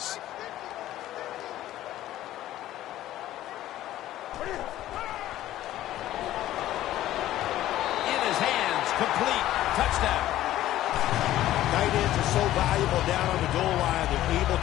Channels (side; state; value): right; quieter; 14.0 dB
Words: In his hands, complete, touchdown. Tight ends are so valuable down on the goal line. They're able